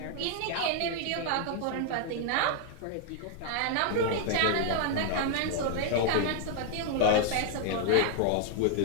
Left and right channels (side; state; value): both; different; correlation 0.00